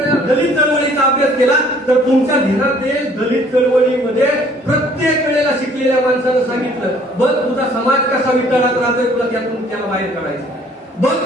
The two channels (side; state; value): both; normal; correlation 0.57